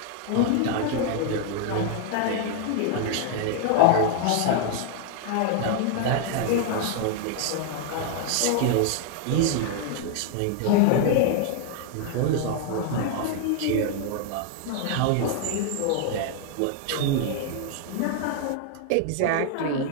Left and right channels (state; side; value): different; both; correlation 0.00